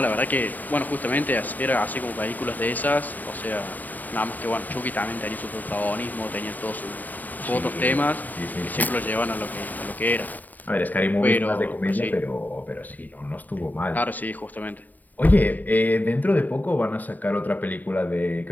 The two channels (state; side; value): late; right; 0.084 ms